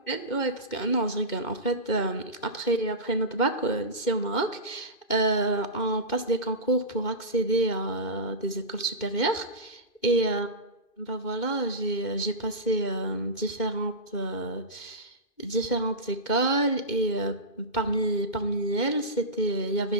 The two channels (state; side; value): late; right; 2.5 ms